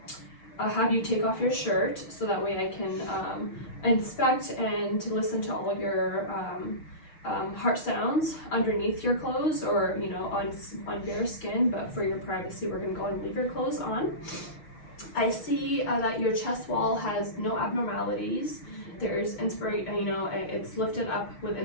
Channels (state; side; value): late; right; 6.1 ms